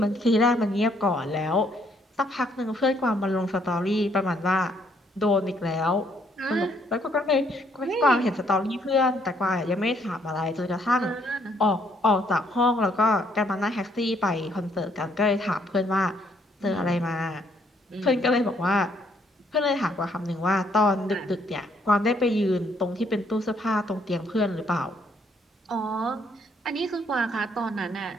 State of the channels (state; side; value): normal; both; correlation 0.68